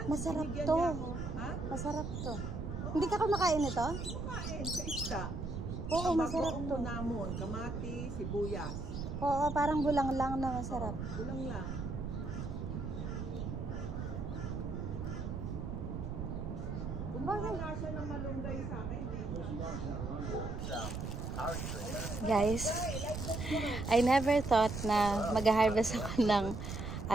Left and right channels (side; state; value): right; noise; rumble, 5 dB below the sound